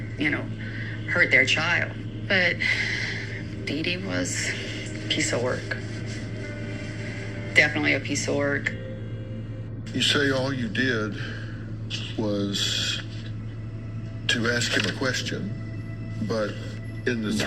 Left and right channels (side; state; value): both; identical; correlation 1.00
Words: hurt their child? But Dee Dee was a piece of work. Definitely a piece of work. You say all you did was to ask him a question, but in the